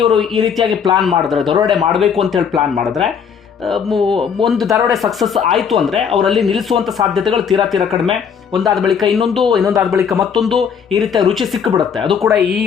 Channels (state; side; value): quieter; right; 7.0 dB